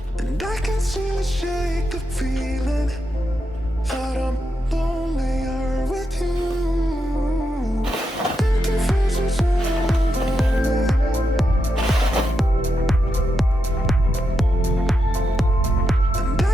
And I can still shake the feeling that I'm lonelier with you.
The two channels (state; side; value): normal; both; correlation 0.85